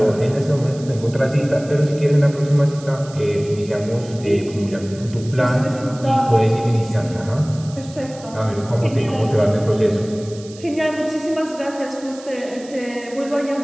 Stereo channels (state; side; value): noise; right; hiss, 20 dB below the sound